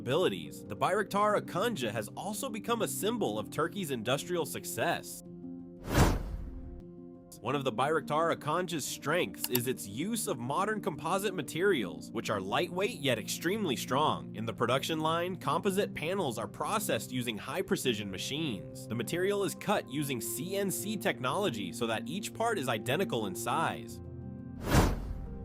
the Bayraktar Akıncı has also become a symbol of Turkey's industrial success. One of the Bayraktar Akıncı's strengths is its use of modern composite materials, which are lightweight yet extremely strong. In the production line, composite panels are processed using high-precision machines. The material is cut using CNC technology so that each part is identical in size.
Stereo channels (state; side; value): identical; both; correlation 1.00